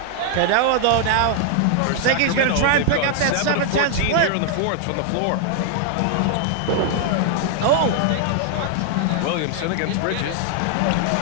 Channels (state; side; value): different; both; correlation 0.00